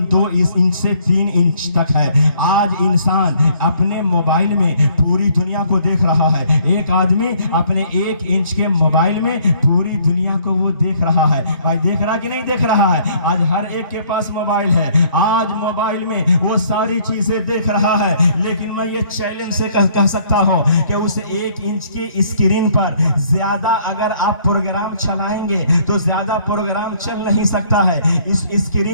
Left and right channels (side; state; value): both; inverted; correlation -0.62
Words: 2 انچ سے 3 انچ تک ہے. آج انسان اپنے موبائل میں پوری دنیا کو دیکھ رہا ہے. ایک آدمی اپنے 1 انچ کے موبائل میں پوری دنیا کو وہ دیکھ رہا ہے. بھائی دیکھ رہا کہ نہیں دیکھ رہا ہے؟ آج ہر ایک کے پاس موبائل ہے، آج موبائل میں وہ ساری چیزیں دیکھ رہا ہے. لیکن میں یہ چیلنج سے کہہ سکتا ہوں کہ اس 1 انچ کی اسکرین پر زیادہ اگر آپ پروگرام چلائیں گے تو زیادہ پروگرام چل نہیں سکتا ہے. اس